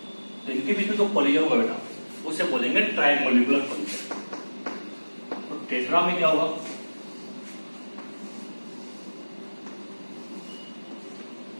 तो इनके बीच में जो कॉलिजन होगा बेटा उसे बोलेंगे ट्राइमोलिकुलर कॉलिजन। तो टेट्रा में क्या होगा?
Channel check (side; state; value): both; inverted; correlation -1.00